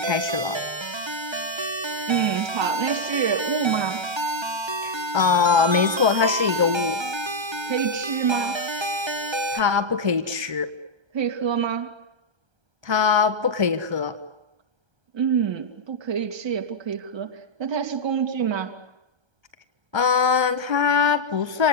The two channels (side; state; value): left; late; 1.3 ms